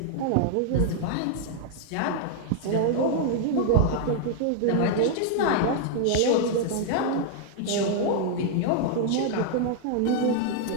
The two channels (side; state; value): both; different; correlation -0.01